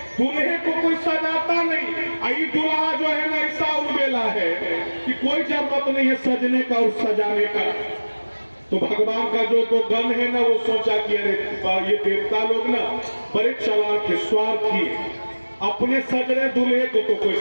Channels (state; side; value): inverted; both; correlation -1.00